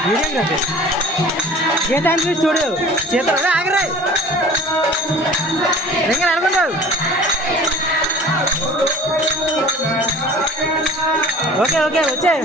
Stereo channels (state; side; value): normal; both; correlation 0.44